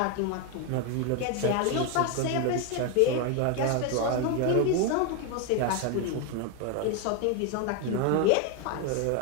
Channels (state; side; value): different; both; correlation 0.01